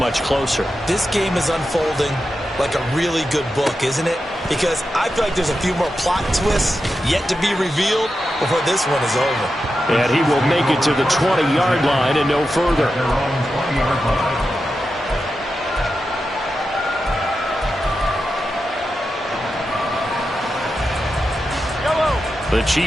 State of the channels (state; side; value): normal; both; correlation 0.90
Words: closer. This game is unfolding like a really good book, isn't it? Because I feel like there's a few more plot twists yet to be revealed before this one is over. And he will make it to the 20-yard line and no further. The